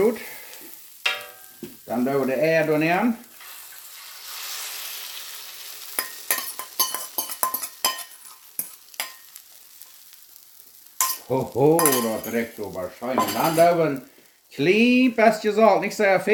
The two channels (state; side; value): identical; both; correlation 1.00